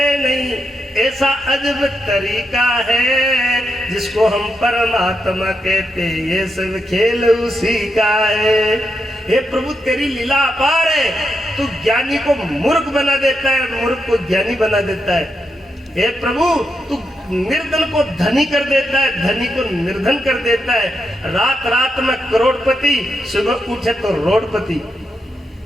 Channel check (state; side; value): normal; both; correlation 0.84